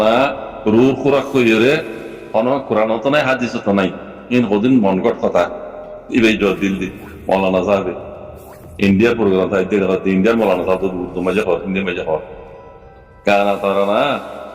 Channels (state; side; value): identical; both; correlation 1.00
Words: রুর খুরাক কইরে কোনো কোরআন তো নাই হাদিস তো নাই ইন হদিন মনগট কথা ইবে জবাব দিল দি মৌলানা সাহেব ইন্ডিয়ার প্রোগ্রাম তাই দেখতে ইন্ডিয়ার মৌলানা সাহেব তো মজা হয় ইন্ডিয়া মজা হয় গানা তারানা